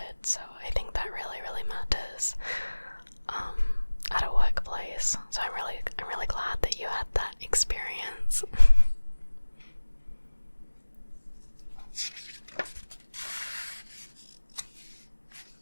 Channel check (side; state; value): both; inverted; correlation -1.00